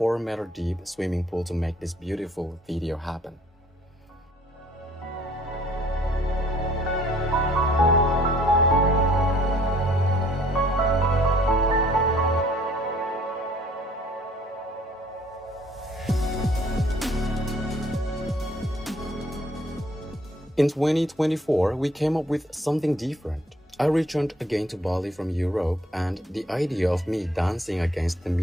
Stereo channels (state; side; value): normal; both; correlation 0.60